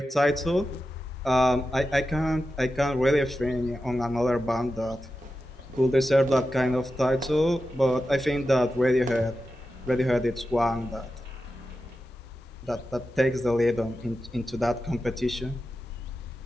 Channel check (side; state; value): both; normal; correlation 0.91